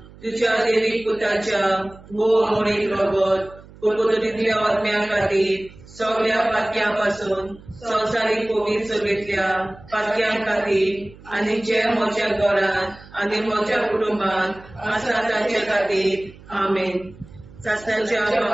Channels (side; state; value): right; noise; hum, 21 dB below the sound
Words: तुज्या देवीक पुताच्या भोव मोडीक रगत पुर्गोतलींतल्या आत्म्या खातीर सगळ्या पातक्यां पासून संवसारीक पवित्र सभेंतल्या पातक्यां खातीर आनी जे म्हज्या घरांत आनी म्हज्या कुटुंबांत आसा तांचे खातीर आमेन सासण्याच्या